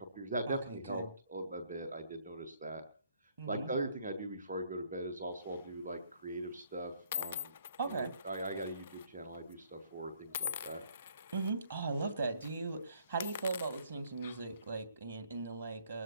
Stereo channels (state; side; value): inverted; both; correlation -0.64